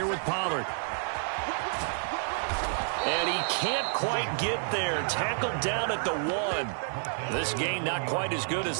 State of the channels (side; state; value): left; silent; 56 dB below the other